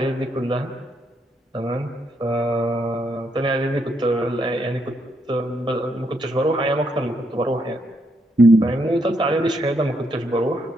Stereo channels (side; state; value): both; normal; correlation 0.76